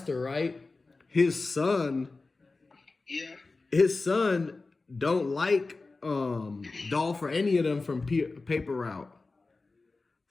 right? His son don't like Dolph or any of them from Paper Route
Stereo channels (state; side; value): quieter; right; 3.7 dB